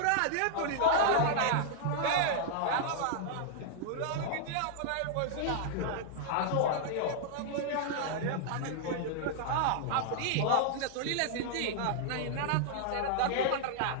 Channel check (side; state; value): both; different; correlation -0.01